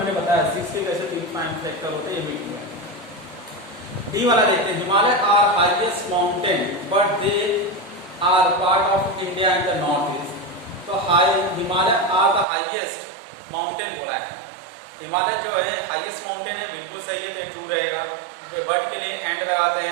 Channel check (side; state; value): left; drops out; at 12.5 s